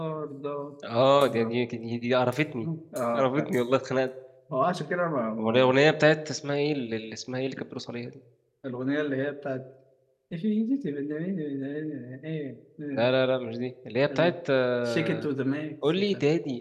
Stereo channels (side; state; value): both; identical; correlation 1.00